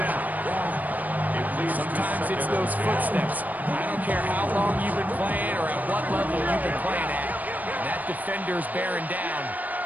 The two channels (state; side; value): late; left; 0.080 ms